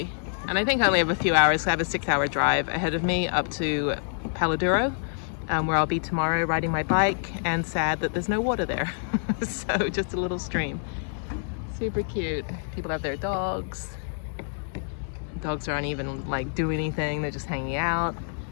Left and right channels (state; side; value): silent; right; 60 dB below the other